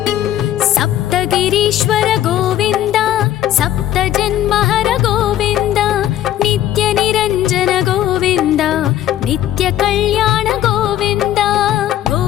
सप्तगिरीश्वर गोविन्द सप्तजन्महर गोविन्द नित्यनिरञ्जन गोविन्द नित्यकल्याण गोविन्द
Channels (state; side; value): quieter; right; 12.4 dB